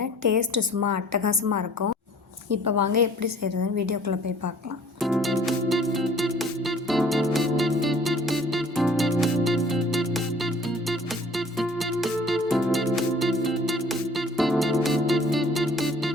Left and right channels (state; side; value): normal; both; correlation 0.52